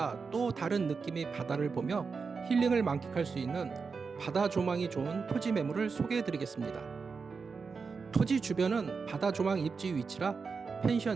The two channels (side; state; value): left; quieter; 5.0 dB